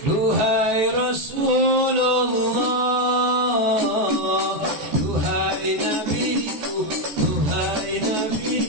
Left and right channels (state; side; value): late; left; 14 ms